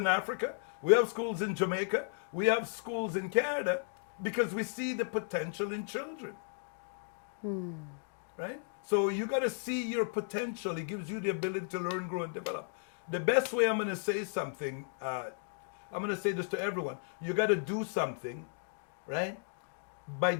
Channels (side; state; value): right; silent; digital silence